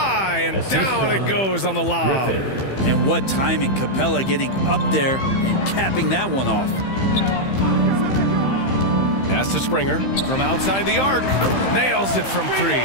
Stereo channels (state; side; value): late; right; 15 ms